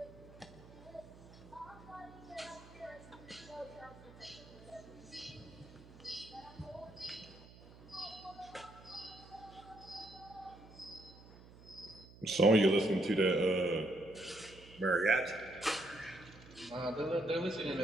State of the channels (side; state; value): right; noise; hum, 20 dB below the sound